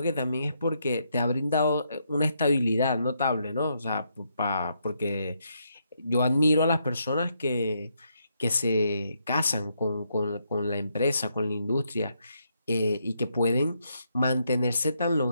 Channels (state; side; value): inverted; both; correlation -0.77